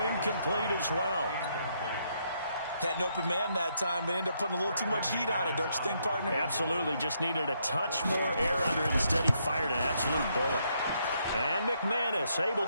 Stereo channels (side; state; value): both; inverted; correlation -0.75